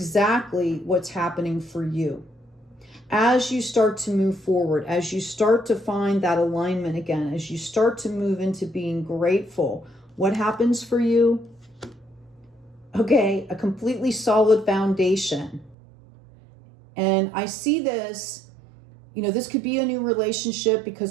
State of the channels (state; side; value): drops out; left; at 15.8 s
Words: what's happening for you. As you start to move forward, as you start to find that alignment again, as you start to move into being grateful, what happens for you? Okay, a completely solid foundation. And I see this, you know, this could be a new relationship